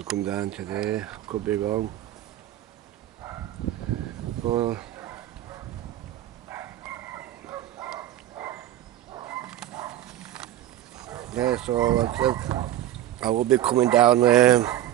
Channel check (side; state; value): left; quieter; 12.9 dB